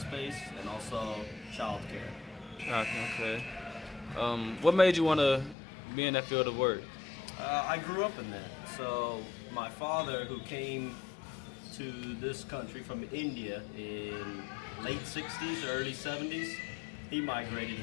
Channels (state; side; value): drops out; right; at 5.6 s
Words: and also childcare. Okay. What made you want to be in that field of work? I grew up in that. So my father, who came to this country from India in late 60s, early 70s, he migrated